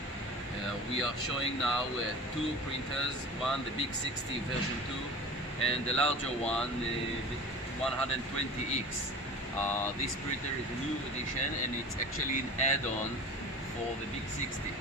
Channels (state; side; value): normal; both; correlation 0.37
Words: We are showing now two printers, one the Big60 version 2 and the larger one, the 120X. This printer is a new edition and it's actually an add-on for the Big60.